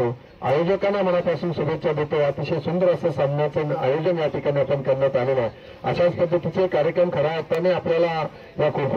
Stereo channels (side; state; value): both; identical; correlation 1.00